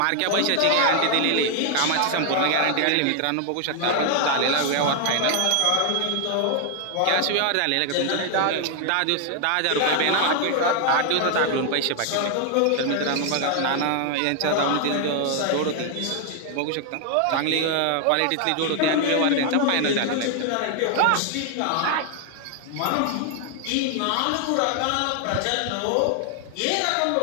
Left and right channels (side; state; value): both; different; correlation 0.00